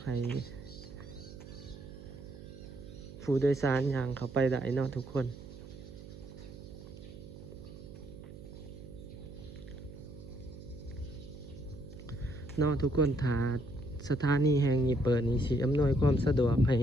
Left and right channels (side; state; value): right; noise; hum, 14 dB below the sound